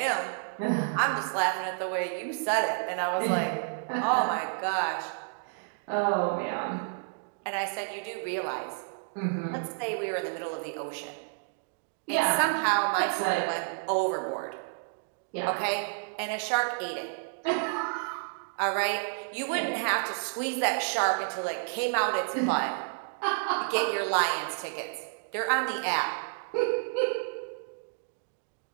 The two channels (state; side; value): silent; left; digital silence